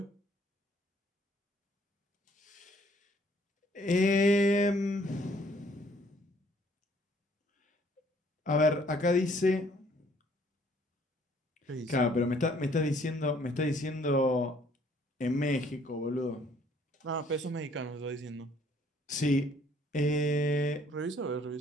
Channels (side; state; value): both; normal; correlation 0.62